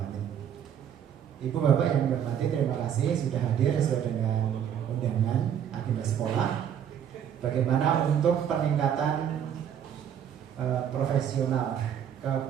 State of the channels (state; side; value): quieter; left; 9.1 dB